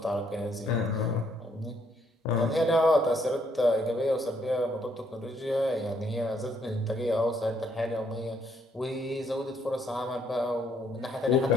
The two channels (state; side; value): normal; both; correlation 0.70